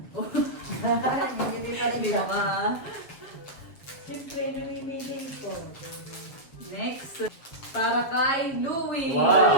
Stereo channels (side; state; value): right; late; 7.5 ms